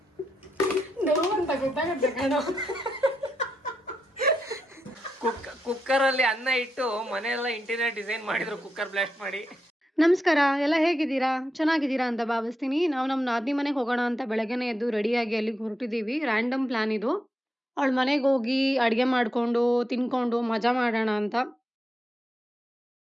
ನೋವಂತ ಗೊತ್ತಾಗುತ್ತೆ ಕಣೋ. ಕುಕ್ಕರ್ ಅಲ್ಲಿ ಅನ್ನ ಇಟ್ಟು ಮನೆಯೆಲ್ಲ ಇಂಟೀರಿಯರ್ ಡಿಸೈನ್ ಮಾಡಿದ್ರು, ಕುಕ್ಕರ್ ಬ್ಲಾಸ್ಟ್ ಮಾಡಿ. ನಮಸ್ಕಾರ, ಎಲ್ಲ ಹೇಗಿದ್ದೀರಾ? ಚೆನ್ನಾಗಿದ್ದೀರಾ ಅಂತ ಭಾವಿಸ್ತೀನಿ. ನಾವು ನಮ್ಮ ನಾದಿನಿ ಮನೆಗೆ ಹೋಗೋಣ ಅಂತ ಬೆಳಗ್ಗೆನೆ ಎದ್ದು ರೆಡಿಯಾಗಿ ಅಲ್ಲಿಗೆ ಹೊರಟಿದ್ದೀವಿ. ರ್ಯಾಂಡಮ್ ಪ್ಲಾನ್ ಇದು. ಅವಳ ಮನೆಗೆ ಹೋಗಿ ಅಡುಗೆ ಮಾಡಿಕೊಂಡು ತಿನ್ಕೊಂಡು ಮಜಾ ಮಾಡೋಣ ಅಂತ.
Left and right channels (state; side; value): normal; both; correlation 0.85